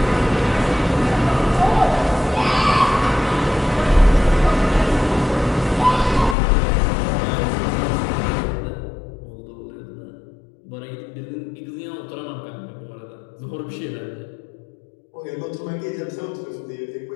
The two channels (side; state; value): right; drops out; at 6.4 s